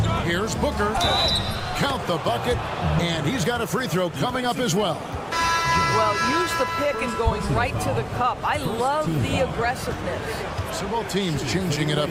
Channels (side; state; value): both; identical; correlation 1.00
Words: Here's Booker. Count the bucket, and he's got a free throw coming up as well. Well, use the pick and going right to the cup. I love the aggressiveness. So both teams changing it up